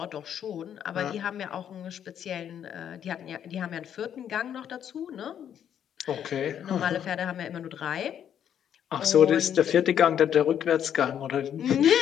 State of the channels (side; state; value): right; quieter; 9.4 dB